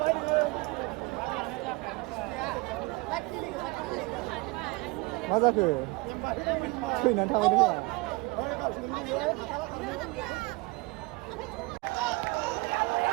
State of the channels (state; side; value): quieter; left; 24.7 dB